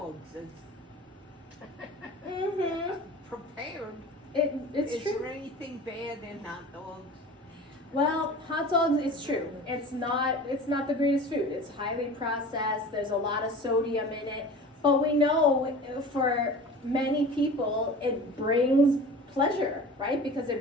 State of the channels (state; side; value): normal; both; correlation 0.38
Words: is prepared. It's Is true. there anything bad in hot dogs? Well, hot dogs, it's true. It's not the greatest food. It's highly processed. There's a lot of sodium in it. But we know for many people it brings pleasure, right? Because